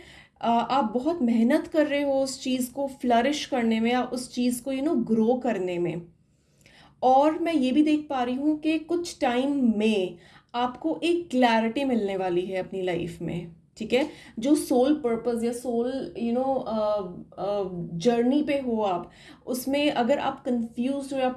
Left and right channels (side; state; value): both; identical; correlation 1.00